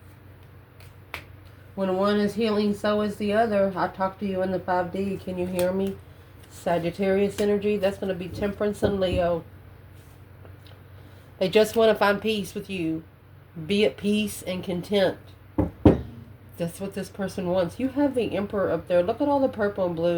When one is healing, so is the other. I talk to you in the 5D. Can you hear me? Sagittarius energy. That's going to be Temperance and Leo. They just want to find peace with you. Be at peace and content. That's what this person wants. You have the Emperor up there. Look at all the purple and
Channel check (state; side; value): identical; both; correlation 1.00